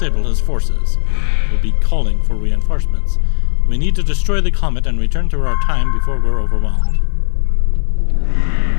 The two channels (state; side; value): silent; right; 70 dB below the other